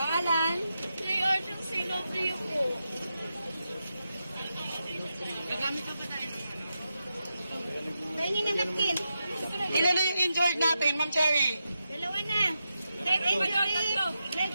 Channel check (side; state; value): both; inverted; correlation -0.87